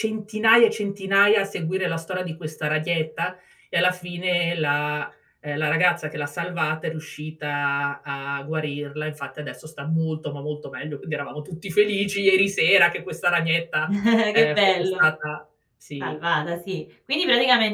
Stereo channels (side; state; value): both; identical; correlation 1.00